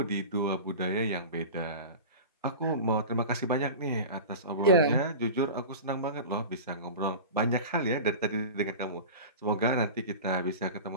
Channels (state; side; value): inverted; both; correlation -0.32